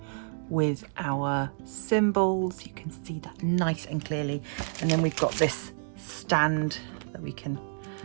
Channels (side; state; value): left; silent; digital silence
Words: with our symbols. You can see that nice and clearly, and then we've got this stand that we can